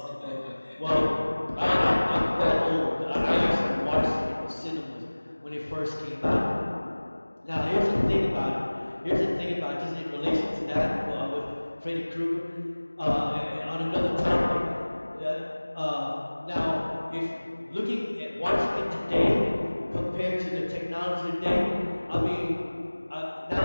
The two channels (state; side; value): inverted; both; correlation -1.00